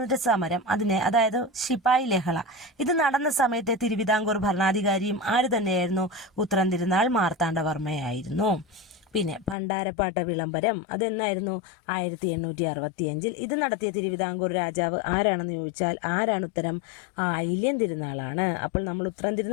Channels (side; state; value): right; drops out; at 9.6 s